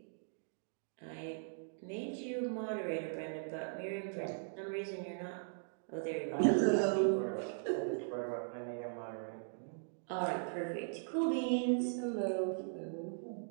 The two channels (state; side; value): silent; left; digital silence